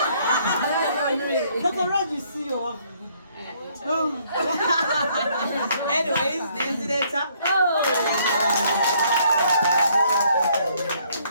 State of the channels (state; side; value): inverted; both; correlation -0.66